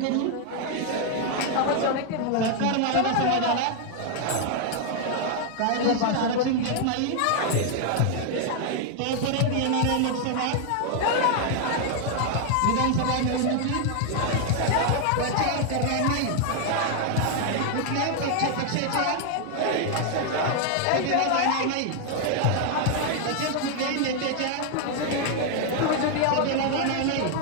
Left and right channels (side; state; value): both; different; correlation 0.00